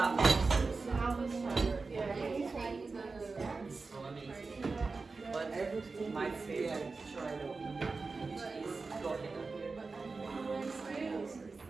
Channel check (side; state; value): left; quieter; 4.1 dB